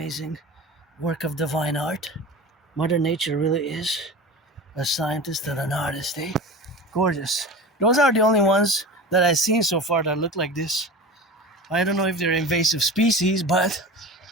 work of divine art? Mother Nature really is a scientist and an artist, Gorgeous. Those are the only ones that I've seen so far that look like this. I don't know if they're invasive species, but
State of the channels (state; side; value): normal; both; correlation 0.32